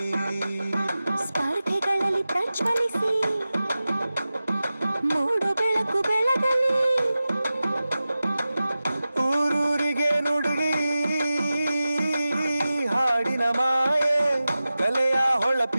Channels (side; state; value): both; inverted; correlation -0.95